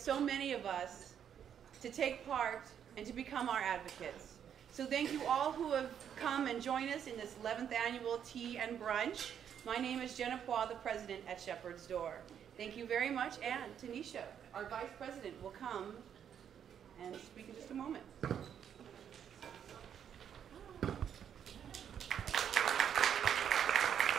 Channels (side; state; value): left; quieter; 8.7 dB